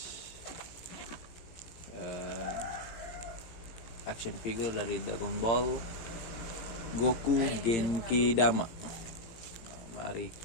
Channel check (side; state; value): right; late; 18 ms